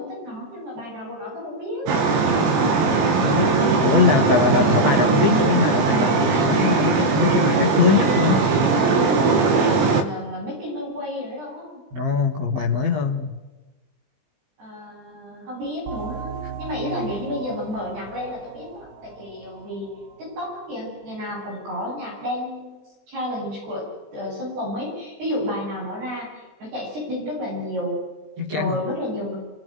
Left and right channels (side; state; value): left; late; 20 ms